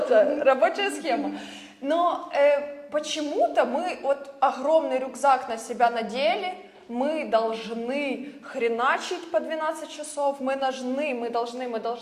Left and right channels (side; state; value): both; identical; correlation 1.00